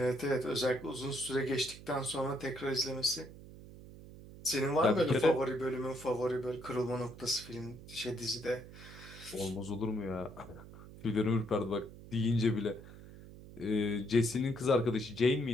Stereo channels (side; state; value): right; noise; hum, 16 dB below the sound